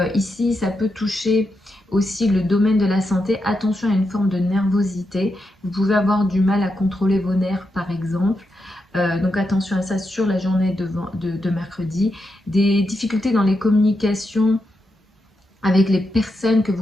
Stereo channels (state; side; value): normal; both; correlation 0.85